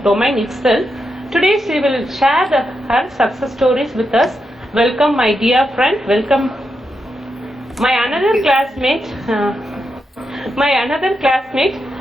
domain itself. Today she will share her success stories with us. Welcome my dear friend, welcome my another classmate,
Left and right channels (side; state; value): both; normal; correlation 0.85